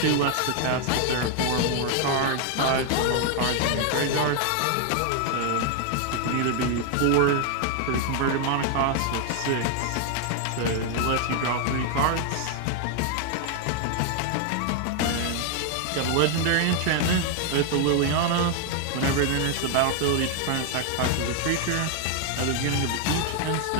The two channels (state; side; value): different; both; correlation 0.00